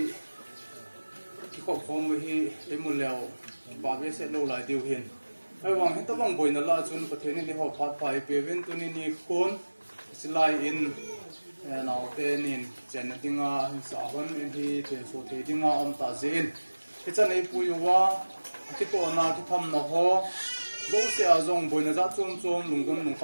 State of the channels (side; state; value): both; inverted; correlation -1.00